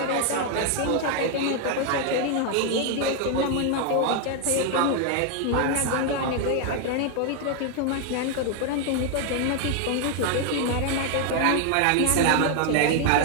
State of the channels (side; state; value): both; different; correlation 0.00